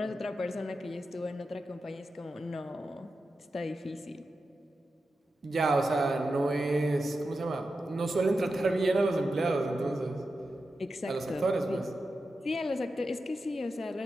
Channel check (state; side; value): normal; both; correlation 0.90